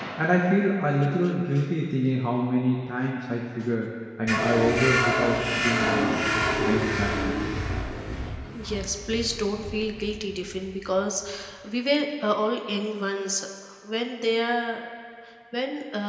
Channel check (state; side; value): identical; both; correlation 1.00